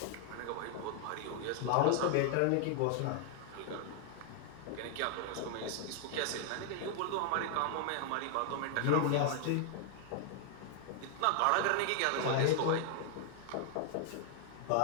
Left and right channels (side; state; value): both; different; correlation 0.00